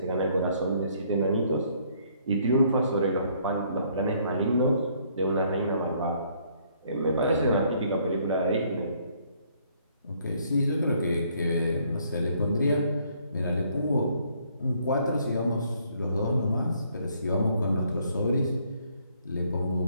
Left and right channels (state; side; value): inverted; both; correlation -0.66